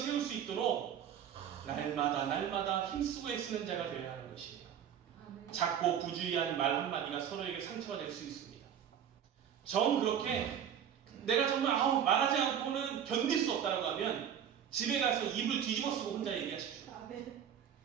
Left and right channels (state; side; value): quieter; left; 9.0 dB